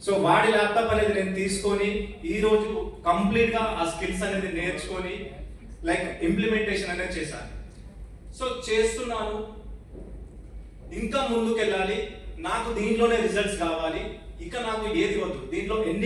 సో వాడి ల్యాప్టాప్ అనేది నేను తీసుకొని ఈరోజు కంప్లీట్ గా ఆ స్కిల్స్ అనేది నేర్చుకొని లైక్ ఇంప్లిమెంటేషన్ అనేది చేశాను. సో చేస్తున్నాను, ఇంకా ముందుకెళ్ళాలి, నాకు దీంట్లోనే రిజల్ట్స్ కావాలి. ఇక నాకు ఏది వద్దు, దీంట్లో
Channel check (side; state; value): both; identical; correlation 1.00